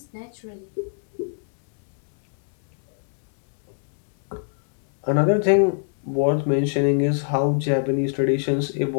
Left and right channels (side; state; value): right; silent; digital silence